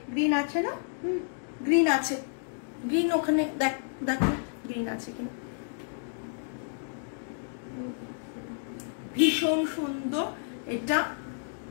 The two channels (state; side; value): silent; right; digital silence